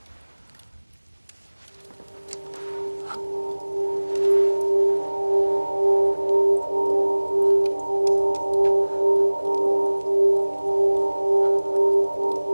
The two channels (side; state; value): both; inverted; correlation -1.00